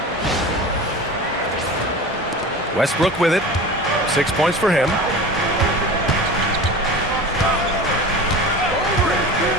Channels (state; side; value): normal; both; correlation 0.34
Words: Westbrook with it. 6 points for him.